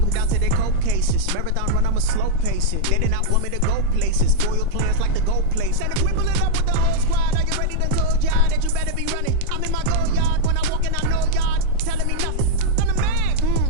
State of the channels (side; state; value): both; different; correlation -0.01